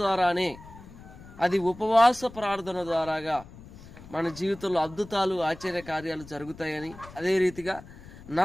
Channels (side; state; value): left; noise; rumble, 18 dB below the sound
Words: ద్వారానే, అది ఉపవాస ప్రార్థన ద్వారాగా మన జీవితంలో అద్భుతాలు, ఆశ్చర్య కార్యాలు జరుగుతాయని, అదే రీతిగా